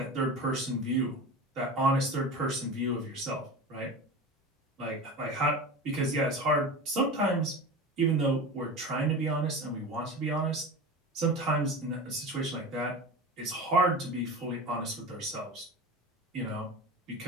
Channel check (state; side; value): normal; both; correlation 0.30